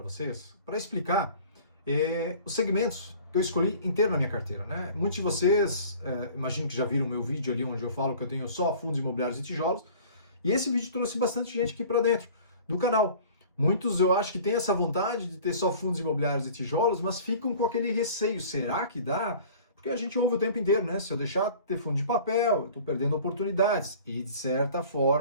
vocês, para explicar os segmentos que eu escolhi inteiro na minha carteira, né? Muitos de vocês, imagino que já viram o meu vídeo ali onde eu falo que eu tenho só fundos imobiliários e tijolos, e esse vídeo trouxe bastante gente aqui para dentro do canal. Muitos eu acho que têm essa vontade de ter só fundos imobiliários e tijolos, mas ficam com aquele receio, será que dá? Porque a gente ouve o tempo inteiro, né? Se eu deixar de ter fundo de papel, eu estou perdendo oportunidades. E de certa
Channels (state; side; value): inverted; both; correlation -0.46